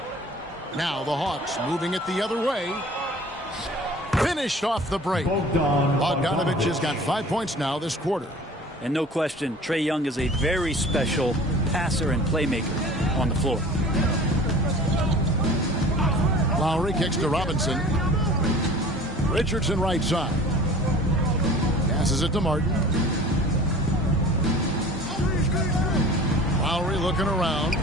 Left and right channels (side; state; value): both; normal; correlation 0.44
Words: Now the Hawks moving it the other way. Finished off the break. Bogdanovich has got 5 points now this quarter. And no question, Trae Young is a very special passer and playmaker on the floor. Lowry kicks to Robinson. Richardson right side. Passes it to Martin. Lowry looking around.